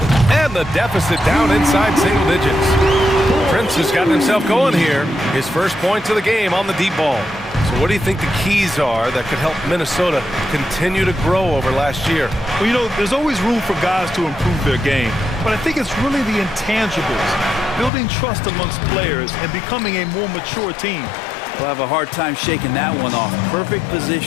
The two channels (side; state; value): right; drops out; at 17.9 s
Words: And the deficit down inside single digits. Prince has gotten himself going here. His first points of the game on the deep ball. So what do you think the keys are that could help Minnesota continue to grow over last year? Well, you know, there's always room for guys to improve their game. But I think it's really the intangibles, building trust amongst players and becoming a more mature team. We'll have a hard time shaking that one off. Perfect